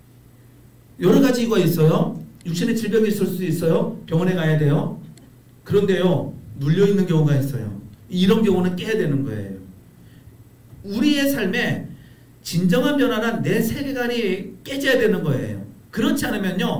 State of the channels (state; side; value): identical; both; correlation 1.00